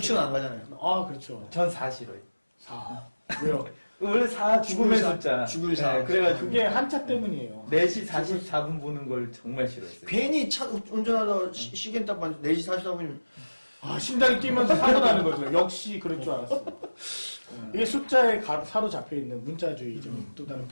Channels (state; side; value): inverted; both; correlation -1.00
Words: 안 가잖아요. 아, 그렇죠. 전 4 싫어요. 4. 왜요? 원래 4 죽음의 죽을 숫자. 죽을 사. 네, 그래가지고 그게 한자 때문이에요. 4시 44분 보는 걸 정말 싫어했어요. 괜히 차 운전하다 시계 딱 봤는데 4시 44분이면 아, 심장이 뛰면서 사고 나는 거죠. 역시 그럴 줄 알았어요. 이게 숫자에 사로잡혀 있는 문자주의적인 또 다른